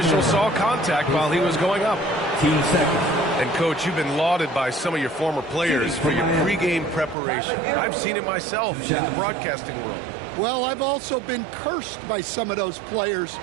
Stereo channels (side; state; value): left; drops out; at 7.2 s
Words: saw contact while he was going up. 15 seconds. And, Coach, you've been lauded by some of your former players for your pregame preparation. I've seen it myself in the broadcasting world. Well, I've also been cursed by some of those players